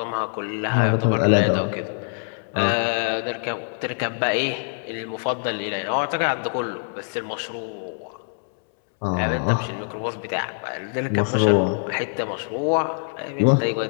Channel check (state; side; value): silent; right; 63 dB below the other